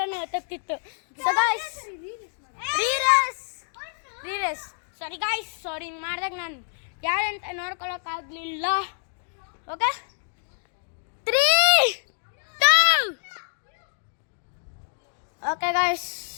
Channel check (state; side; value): silent; right; digital silence